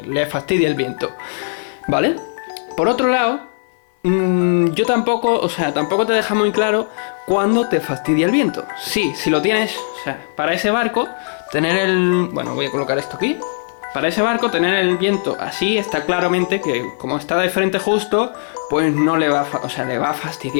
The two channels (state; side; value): silent; right; 67 dB below the other